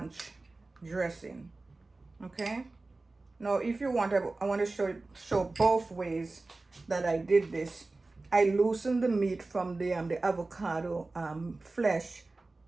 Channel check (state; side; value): quieter; left; 3.3 dB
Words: dressing. Okay, now if you want, I want to show both ways that I did this. I loosened the meat from the avocado flesh